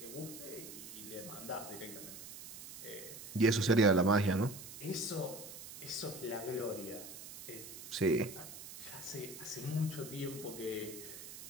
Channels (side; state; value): right; noise; hiss, 12 dB below the sound